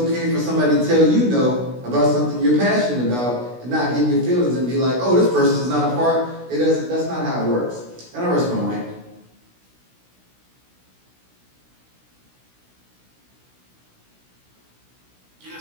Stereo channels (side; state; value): left; late; 16 ms